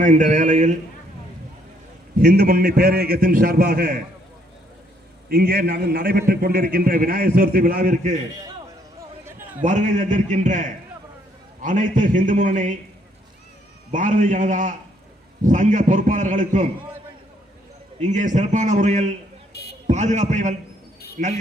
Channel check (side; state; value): both; normal; correlation 0.69